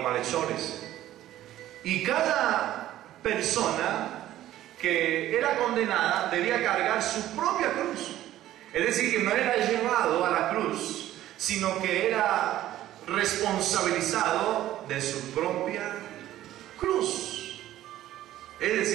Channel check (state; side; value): quieter; left; 13.6 dB